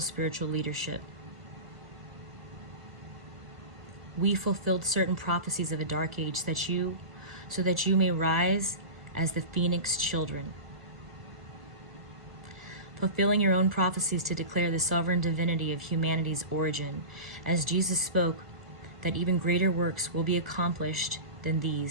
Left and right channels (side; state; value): left; late; 1.4 ms